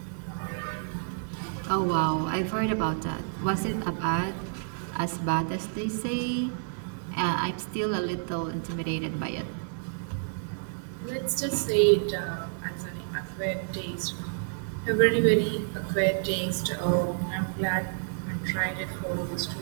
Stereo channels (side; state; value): left; silent; digital silence